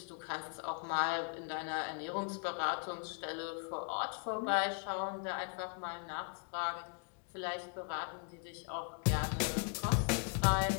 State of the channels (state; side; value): quieter; right; 39.5 dB